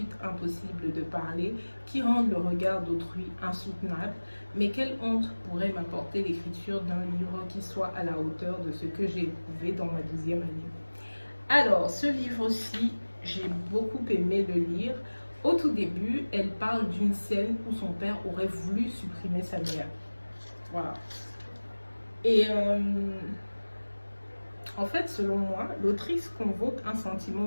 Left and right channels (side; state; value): both; inverted; correlation -1.00